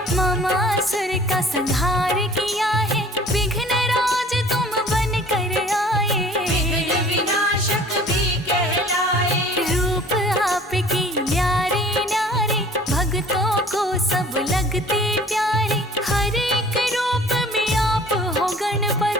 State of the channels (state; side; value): normal; both; correlation 0.50